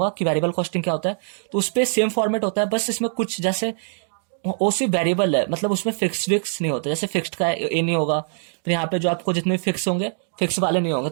कि वेरिएबल कॉस्टिंग क्या होता है। तो उस पर सेम फॉर्मेट होता है, बस इसमें कुछ जैसे वो सिर्फ वेरिएबल है, मतलब उसमें फिक्स नहीं होता। जैसे फिक्स्ड का ये नहीं होगा, फिर यहाँ पे जो आपको जितने फिक्स होंगे फिक्स वाले नहीं होंगे,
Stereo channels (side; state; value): left; silent; digital silence